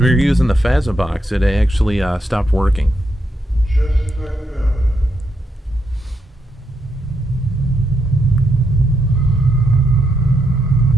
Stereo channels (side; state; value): both; normal; correlation 0.81